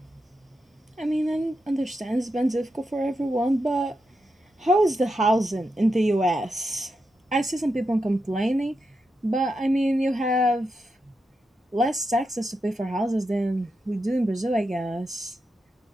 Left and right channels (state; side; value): normal; both; correlation 0.86